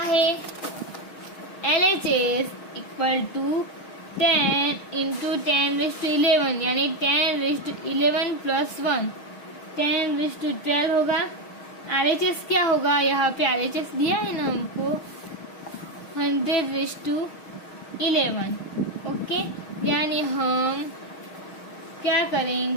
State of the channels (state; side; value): late; right; 6.4 ms